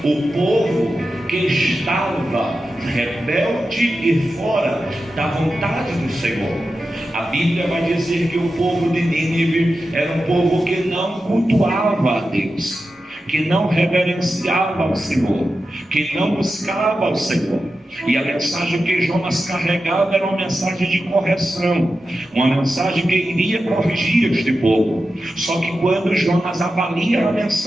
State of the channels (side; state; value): both; normal; correlation 0.91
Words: o povo que estava rebelde e fora da vontade do Senhor. A Bíblia vai dizer que o povo de Nínive era um povo que não cultuava a Deus, que não reverenciava ao Senhor, que não buscava ao Senhor. E a mensagem que Jonas carregava era uma mensagem de correção, uma mensagem que iria corrigir este povo. Só que quando Jonas avalia a